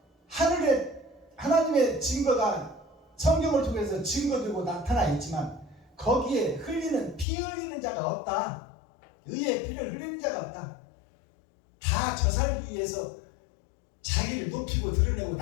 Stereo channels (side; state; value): right; drops out; at 7.2 s